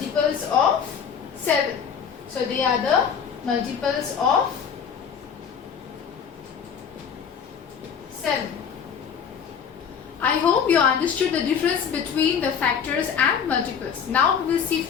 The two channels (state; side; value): quieter; right; 7.2 dB